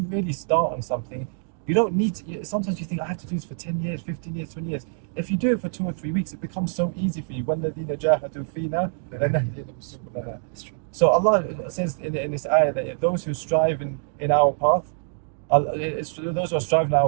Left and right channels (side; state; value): left; silent; digital silence